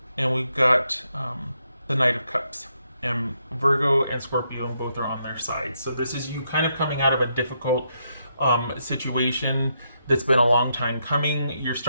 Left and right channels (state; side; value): inverted; both; correlation -0.79